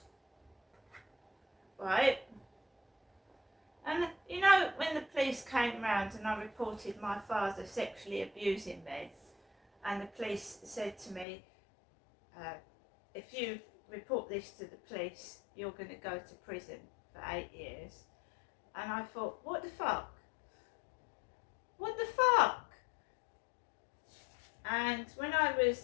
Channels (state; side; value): drops out; right; at 11.2 s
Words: Right? And you know, when the police came round and I reported my father sexually abusing me, and the police said to me, if you report this to the police, you're going to go to prison for 8 years. And I thought, what the fuck? What the fuck? And when I